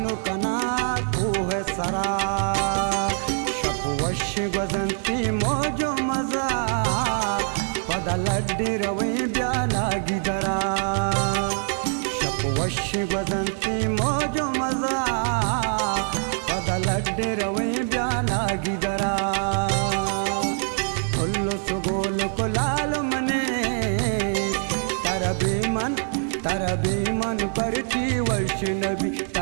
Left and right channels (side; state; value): left; silent; 57 dB below the other